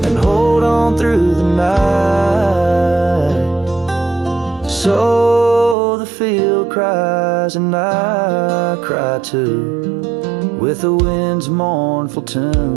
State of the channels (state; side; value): drops out; left; at 5.8 s